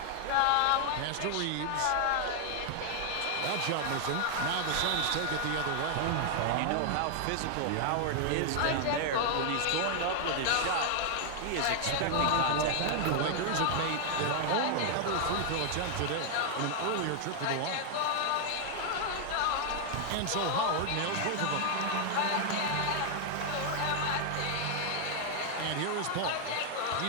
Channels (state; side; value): different; both; correlation 0.00